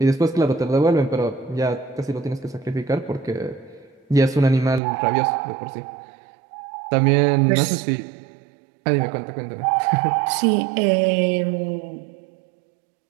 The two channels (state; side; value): drops out; left; at 4.8 s